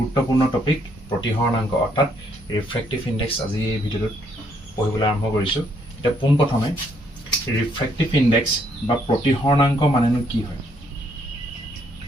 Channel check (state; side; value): normal; both; correlation 0.71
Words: টপিক প্ৰতিহৰণাংক অৰ্থাৎ ৰিফ্ৰেক্টিভ ইনডেক্স আজি এই ভিডিঅ'টোত পঢ়িবলৈ আৰম্ভ কৰিছো এটা পোনপ্ৰথমে ৰিফ্ৰেক্টিভ ইনডেক্স বা প্ৰতিহৰণাংক মানেনো কি হয়